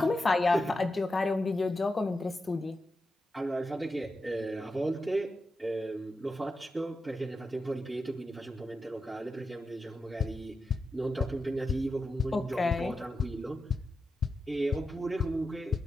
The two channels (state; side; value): normal; both; correlation 0.89